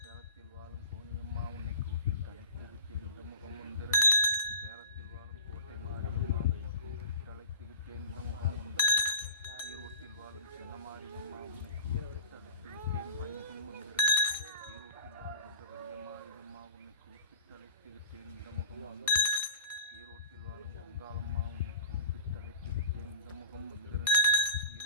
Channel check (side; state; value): both; inverted; correlation -0.34